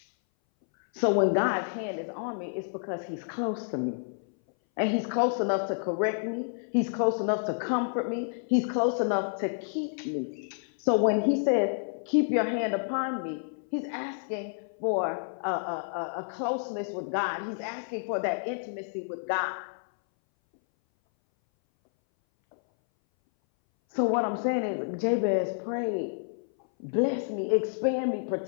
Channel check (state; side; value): silent; right; 58 dB below the other